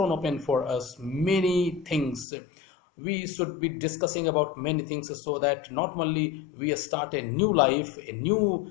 for us many things. We should be discussing about many things, so that not only we start a new life, a new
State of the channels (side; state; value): right; drops out; at 2.2 s